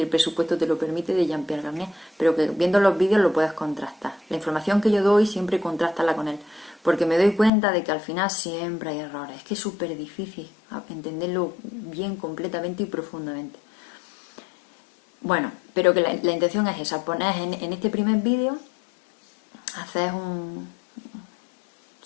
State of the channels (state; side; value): drops out; right; at 7.5 s